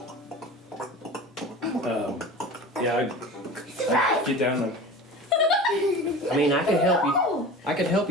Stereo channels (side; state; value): both; normal; correlation 0.35